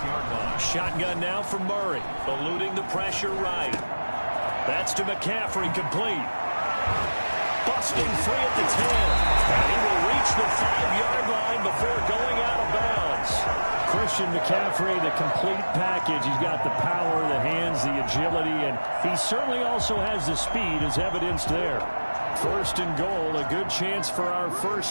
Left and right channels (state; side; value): inverted; both; correlation -1.00